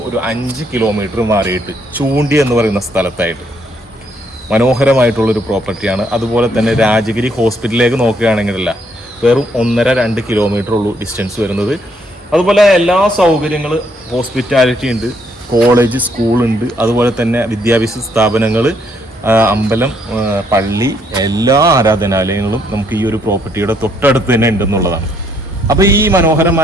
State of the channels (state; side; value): normal; both; correlation 0.71